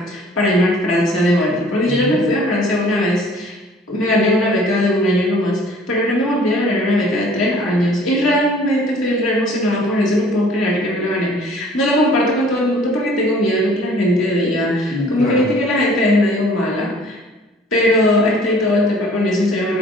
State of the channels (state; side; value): normal; both; correlation 0.53